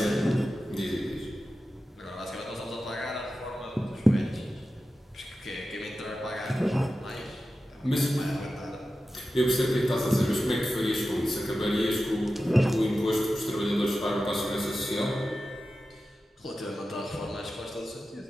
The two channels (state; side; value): normal; both; correlation 0.93